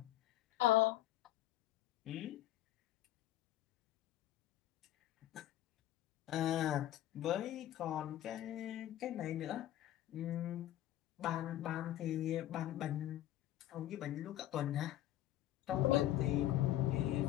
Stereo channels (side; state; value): right; quieter; 13.7 dB